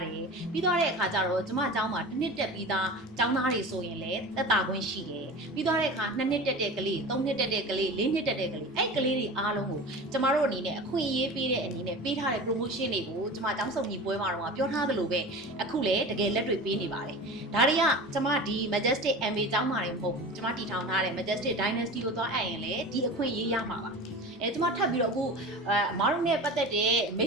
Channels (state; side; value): normal; both; correlation 0.33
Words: တယ်ပြီးတော့တဲ့အခါကျတော့ကျမကျောင်းမှာတစ်နှစ်တက်ပြီးသားကျောင်းသားတွေဆိုရင်လည်းသက်တာခွင့်ရှိတယ်ပြီးတော့တဲ့အခါ2နှစ်တက်တဲ့ကလေး3နှစ်တက်တဲ့ကလေး4နှစ်တက်တဲ့ကလေးအဲ့ကလေးတွေအားလုံးကိုကျမတို့အနေနဲ့အခွင့်အရေးပေးတဲ့အနေနဲ့ပေးထားတဲ့ promotion တွေကိုကျမကျောင်းစုံညီပွဲမှာတော့ပြောထားသလိုပဲအခုလည်းတကယ်လက်တွေ့ပေးနေပါတယ်ဒါတွေကကျမဒီ Majestic MA ကျောင်းမှာတွေမဟုတ်ဘူးကျမတည်ထောင်ထားတဲ့ Majestic Dynasty ကိုသွားအပ်ရင်လည်းဒီအခွင့်အရေးရမှာပါကျမထပ်ပြီးတော့အခုအမားတို့နဲ့ပတ်သက်တဲ့မိ